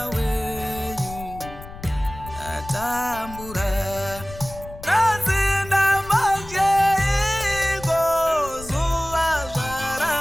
wenyu ndatambura. Nazinda majeiko zuva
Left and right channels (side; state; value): left; noise; rumble, 15 dB below the sound